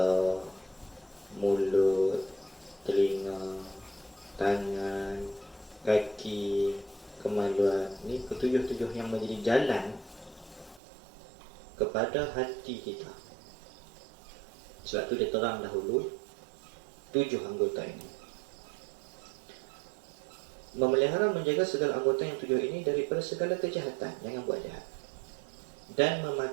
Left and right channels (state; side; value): drops out; left; at 10.8 s